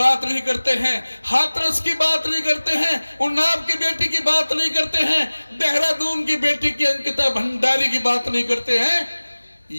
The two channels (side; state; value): both; inverted; correlation -1.00